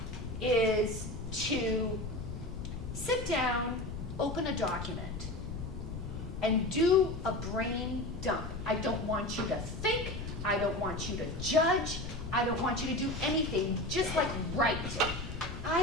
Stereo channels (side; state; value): left; noise; rumble, 8 dB below the sound